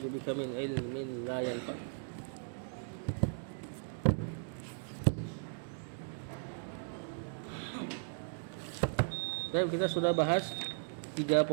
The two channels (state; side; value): silent; left; digital silence